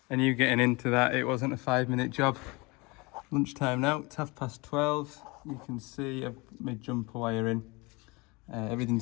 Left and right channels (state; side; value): quieter; right; 26.1 dB